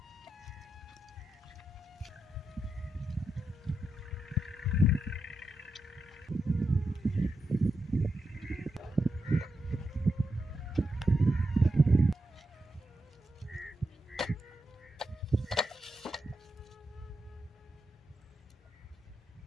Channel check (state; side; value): normal; both; correlation 0.85